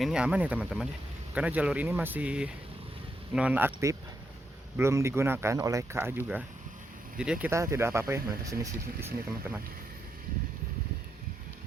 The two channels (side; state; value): both; normal; correlation 0.81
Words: aman ya teman-teman ya, karena jalur ini masih non aktif, belum digunakan oleh KA juga. Jadi ya kita tidak apa-apa ya melintas di sini teman-teman.